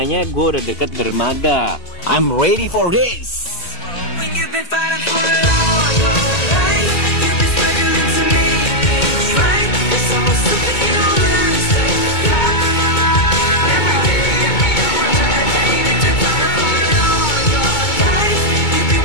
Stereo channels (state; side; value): late; right; 2.2 ms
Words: gue udah deket dermaga. I'm ready for this.